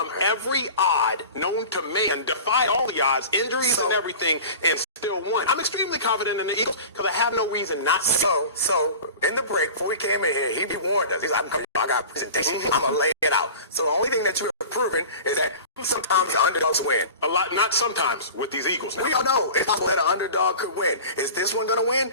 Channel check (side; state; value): both; inverted; correlation -0.37